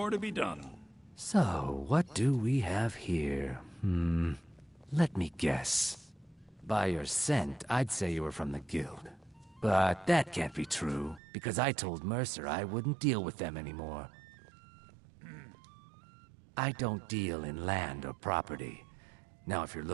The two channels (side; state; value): left; drops out; at 11.2 s